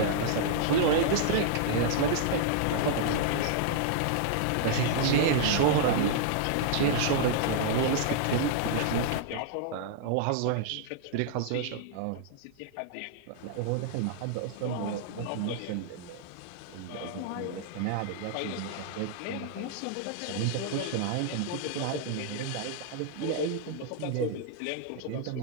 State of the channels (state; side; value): different; both; correlation -0.01